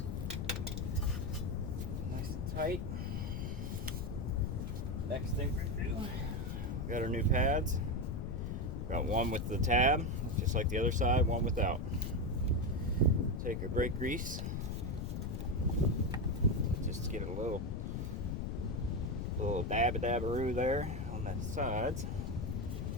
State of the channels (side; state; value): left; noise; rumble, 3 dB below the sound